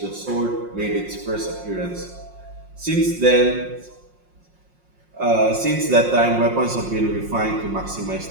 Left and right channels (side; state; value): left; late; 5.6 ms